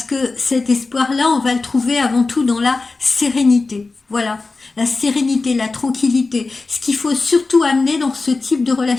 que cet espoir-là, on va le trouver avant tout dans la sérénité. Voilà, la sérénité, la tranquillité. Ce qu'il faut surtout amener dans ce type de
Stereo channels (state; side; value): quieter; right; 3.7 dB